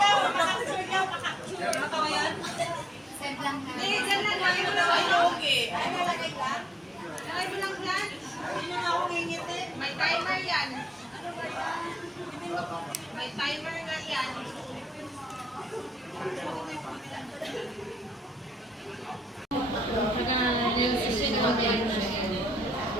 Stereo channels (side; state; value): both; normal; correlation 0.83